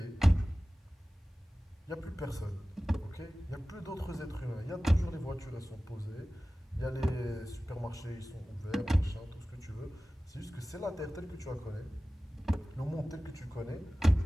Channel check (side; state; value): both; normal; correlation 0.97